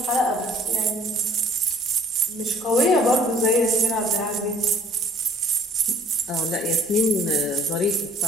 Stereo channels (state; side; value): normal; both; correlation 0.54